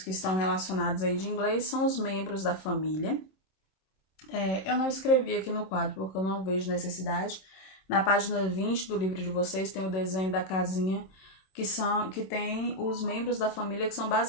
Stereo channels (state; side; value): late; right; 26 ms